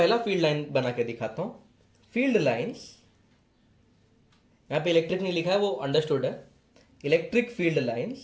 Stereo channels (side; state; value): both; identical; correlation 1.00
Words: फील्ड लाइन बना के दिखाता हूं। फील्ड लाइंस, यहां पे इलेक्ट्रिक नहीं लिखा है, वो अंडरस्टूड है। Electric field